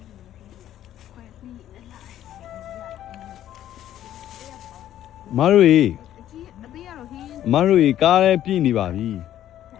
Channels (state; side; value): quieter; right; 11.9 dB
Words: မတို့ရေ အကြီးအသေးရတော့ဟင်း မတို့ရေကားလည်းပြည့်နေပါပြီ န